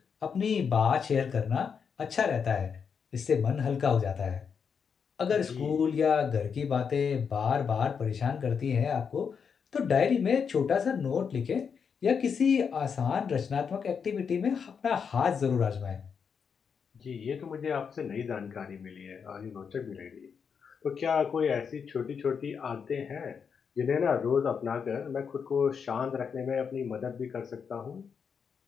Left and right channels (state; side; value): quieter; right; 6.5 dB